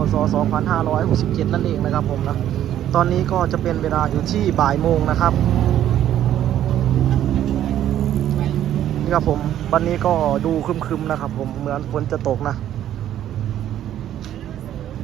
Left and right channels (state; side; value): quieter; left; 11.5 dB